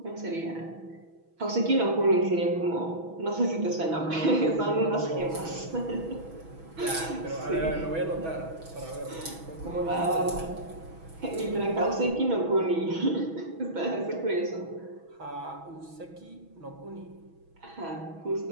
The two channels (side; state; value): left; late; 6.1 ms